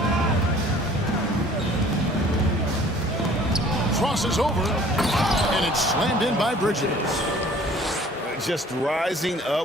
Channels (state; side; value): normal; both; correlation 0.52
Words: Crosses over, and it's slammed in by Bridges. Just rising